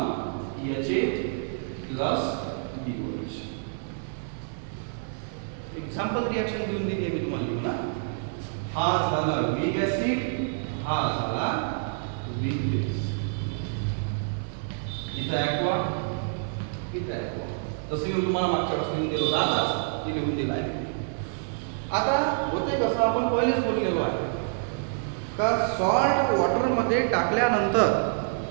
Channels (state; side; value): silent; left; 60 dB below the other